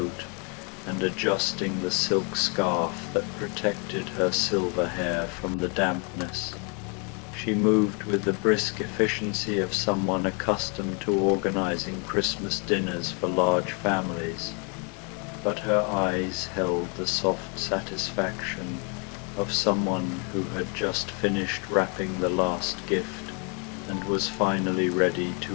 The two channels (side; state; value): right; quieter; 35.2 dB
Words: and adjusting the silk scarf that protected her silver hair from the dampness. She moved with the brisk efficiency of someone accustomed to organizing Christmas dinners for large families, but her eyes held the soft satisfaction of someone who had just finished wrapping the last gift and was finally ready